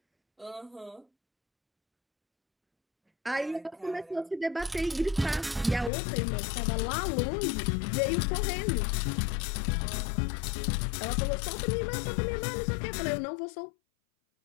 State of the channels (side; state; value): right; drops out; at 5.9 s